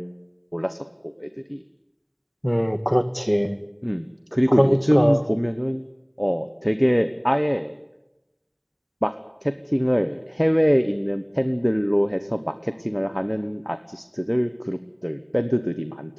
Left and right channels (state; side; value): identical; both; correlation 1.00